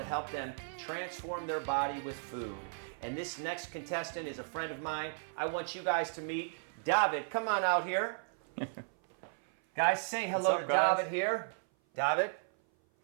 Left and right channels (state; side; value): silent; left; 54 dB below the other